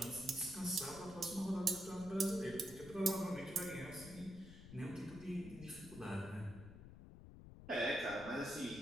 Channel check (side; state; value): left; noise; rumble, 14 dB below the sound